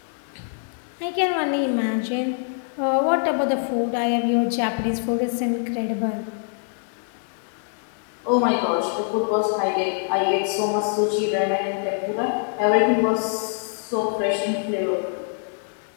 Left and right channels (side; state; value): right; silent; 62 dB below the other